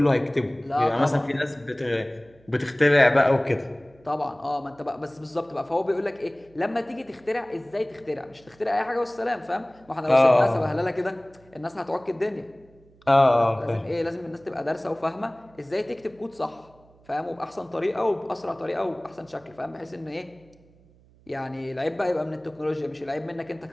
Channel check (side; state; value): right; noise; hum, 28 dB below the sound